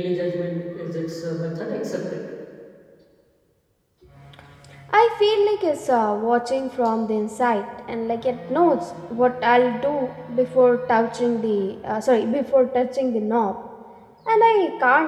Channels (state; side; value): identical; both; correlation 1.00